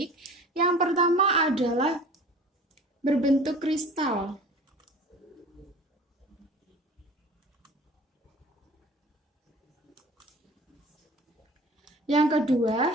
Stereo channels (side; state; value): both; normal; correlation 0.43